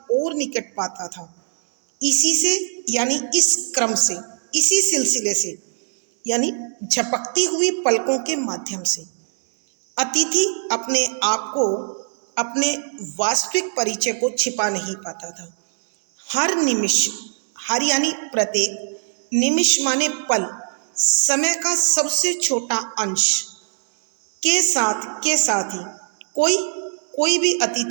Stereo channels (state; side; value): silent; left; 64 dB below the other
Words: और निकट पाता था। इसी से यानी इस क्रम से, इसी सिलसिले से यानी झपकती हुई पलकों के माध्यम से अतिथि अपने आप को, अपने वास्तविक परिचय को छिपा नहीं पाता था। हर निमिष, हर यानी प्रत्येक, निमिष माने पल, समय का सबसे छोटा अंश के साथ ही कोई भी